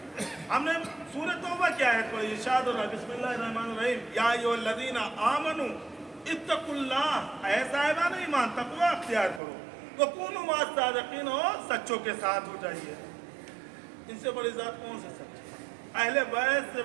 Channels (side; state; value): left; drops out; at 9.4 s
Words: ہم نے سورۃ توبہ کیا ہے تو ارشاد ہو رہا ہے، بسم اللہ الرحمن الرحیم، یا ایھا الذین آمنوا اتقوا اللہ، اے صاحبان ایمان تقوی اختیار کرو، وکونوا مع الصادقین، اور سچوں کے ساتھ ہو جائیے۔ ان سے بڑی ذات کون سے سچا، اہل بیت سے